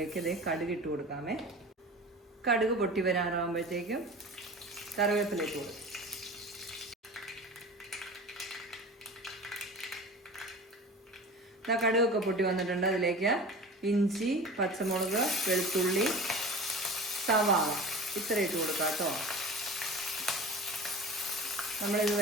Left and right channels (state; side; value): normal; both; correlation 0.36